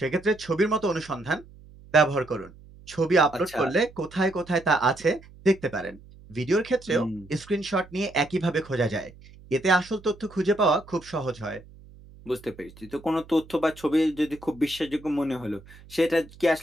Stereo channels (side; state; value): right; noise; hum, 22 dB below the sound